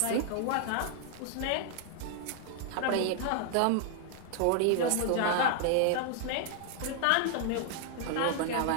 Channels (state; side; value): different; both; correlation 0.00